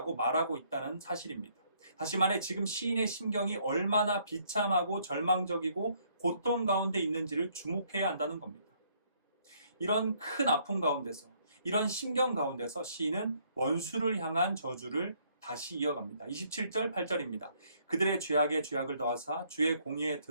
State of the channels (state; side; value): inverted; both; correlation -0.66